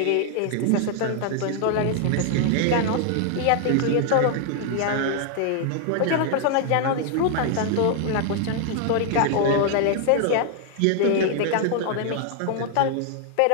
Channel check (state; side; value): different; both; correlation 0.00